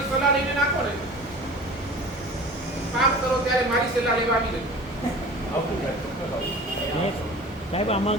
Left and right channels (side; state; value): both; normal; correlation 0.39